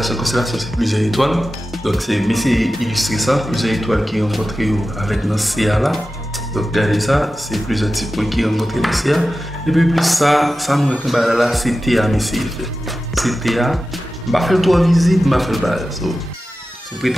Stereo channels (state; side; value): normal; both; correlation 0.94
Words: c'est plusieurs étoiles. Donc c'est mais c'est illustrer ça, plusieurs étoiles qui rencontrent avec notre CA là. Donc regardez ça, c'est plusieurs types qui rencontrent le CA et puis plus ça nous retombe là c'est TA mais c'est TA. Je vais faire 3 visites, je vais faire le bagage. So,